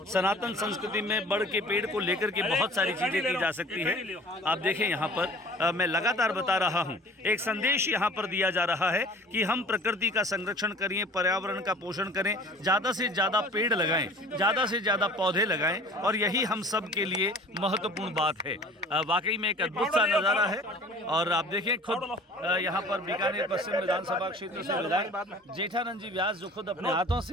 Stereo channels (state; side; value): normal; both; correlation 0.46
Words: सनातन संस्कृति में बड़ के पेड़ को लेकर के बहुत सारी चीज़ें की जा सकती है। आप देखें यहाँ पर मैं लगातार बता रहा हूँ एक संदेश यहाँ पर दिया जा रहा है कि हम प्रकृति का संरक्षण करें, पर्यावरण का पोषण करें, ज़्यादा से ज़्यादा पेड़ लगाएं, ज़्यादा से ज़्यादा पौधे लगाएं और यही हम सब के लिए महत्वपूर्ण बात है। वाकई में एक अद्भुत सा नज़ारा है। और आप देखें खुद यहाँ पर बीकानेर पश्चिम विधानसभा क्षेत्र से विधायक जेठानंद जी व्यास जो खुद अपने हाथों